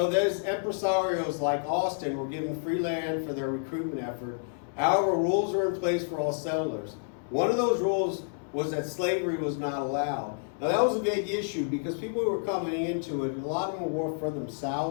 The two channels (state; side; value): silent; right; 58 dB below the other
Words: those empresarios like Austin were given free land for their recruitment effort. However, rules were in place for all settlers. One of those rules was that slavery was not allowed. Now that was a big issue because people who were coming into it, a lot of them were further